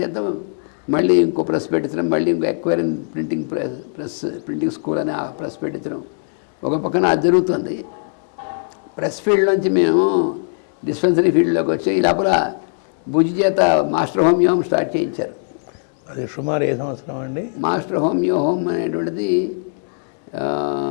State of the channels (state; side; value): silent; right; 66 dB below the other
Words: చేత మళ్ళీ ఇంకో ప్రెస్ పెట్టించడం, మళ్ళీ ఇంకో ఎక్వైరింగ్ ప్రింటింగ్ స్కూల్ అని ఆ ప్రెస్ పెట్టించడం ఒక పక్కన అది జరుగుతుంది. ప్రెస్ ఫీల్డ్ నుంచి మేము డిస్పెన్సరీ ఫీల్డ్లోకి వచ్చి ఈ లోపల భుజి చేత మాస్టర్ హోమియో స్టార్ట్ చేయించారు. అది సుమారు ఏ సంవత్సరం అండి? మాస్టర్ హోమియో హోమ్ అనేటువంటిది